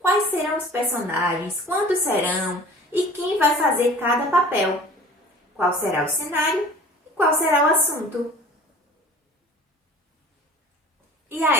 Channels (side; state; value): both; normal; correlation 0.44